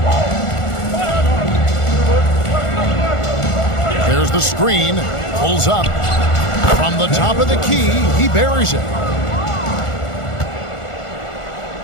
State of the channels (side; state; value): right; late; 1.4 ms